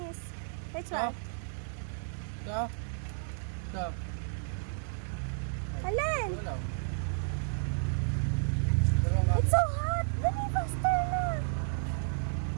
Which one? Ito? Ito? Alin? Wala. Dalawang kamel. It's so hot! Dali, faster na!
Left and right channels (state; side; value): silent; left; digital silence